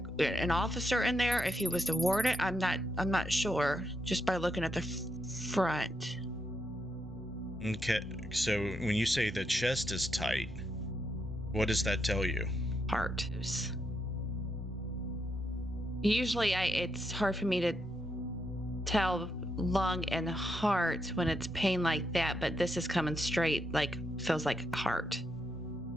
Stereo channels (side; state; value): both; normal; correlation 0.80